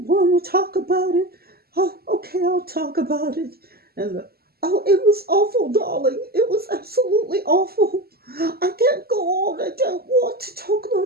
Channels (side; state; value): left; late; 0.45 ms